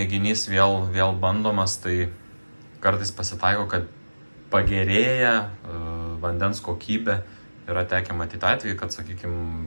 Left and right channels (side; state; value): both; inverted; correlation -1.00